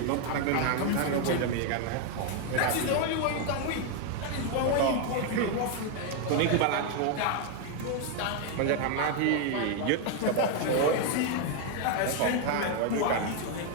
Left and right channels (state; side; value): different; both; correlation 0.01